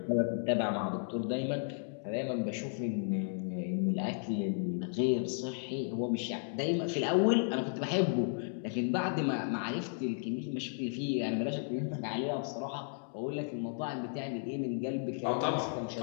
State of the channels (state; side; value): silent; right; digital silence